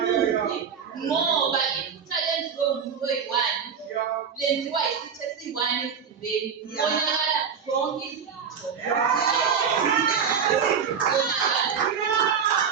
Ngoba iphutha lenziwe umuntu oyi-1 lenziwa isitho esi-1 emzimbeni. Bonakala zonke izitho.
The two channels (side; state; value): left; quieter; 6.8 dB